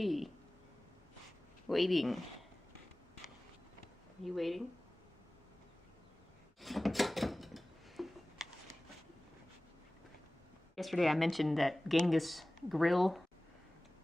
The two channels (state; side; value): normal; both; correlation 0.98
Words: waiting. Are you waiting? Yesterday I mentioned that Genghis grill,